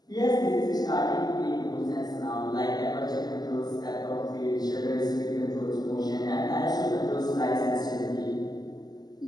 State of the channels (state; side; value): late; right; 0.20 ms